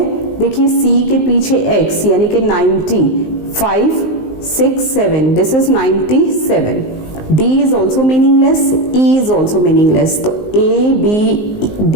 देखिए C के पीछे X यानी कि 90, 5, 6, 7, this is 97, D is also meaningless, E is also meaningless, तो A, B, D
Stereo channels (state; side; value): late; right; 19 ms